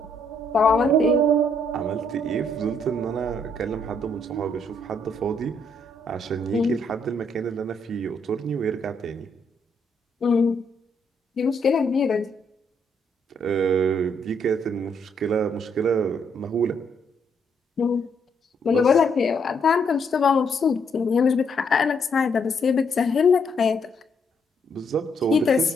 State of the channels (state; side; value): normal; both; correlation 0.72